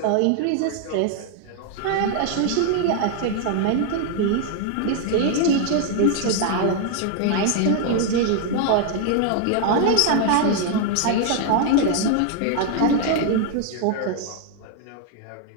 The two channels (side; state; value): both; different; correlation 0.00